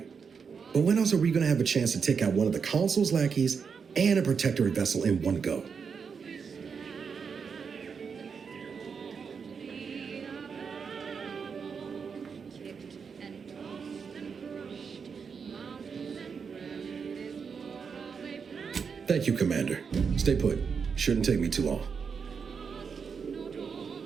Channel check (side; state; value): left; quieter; 6.0 dB